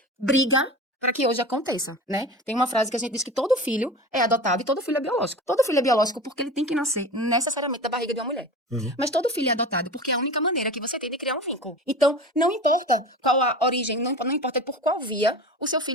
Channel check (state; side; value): normal; both; correlation 0.32